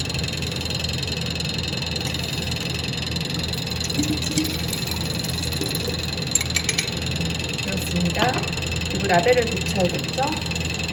그렇습니다. 그리고 라벨을 붙여야겠죠?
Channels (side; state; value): both; identical; correlation 1.00